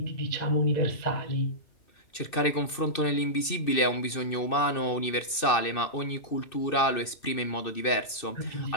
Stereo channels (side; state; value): right; late; 2.6 ms